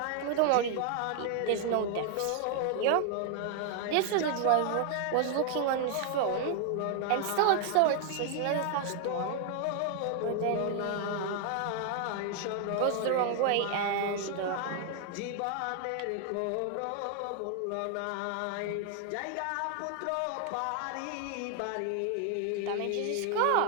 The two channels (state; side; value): different; both; correlation 0.00